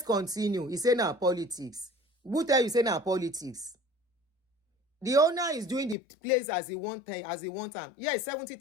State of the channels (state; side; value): drops out; right; at 6.0 s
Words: continue. He say now politics. Who tell you say now politics? The owner is doing the place as he want them. Yes,